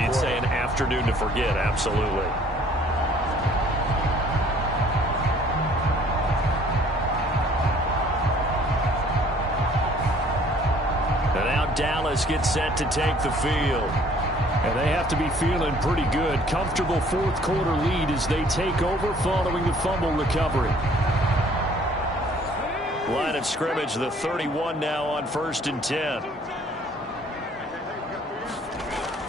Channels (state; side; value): normal; both; correlation 0.57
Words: You'd say an afternoon to forget. Absolutely. Dallas gets set to take the field. And they have to be feeling pretty good. Comfortable fourth quarter lead as they take over following the fumble recovery. Line of scrimmage, the 31 now on 1st and 10.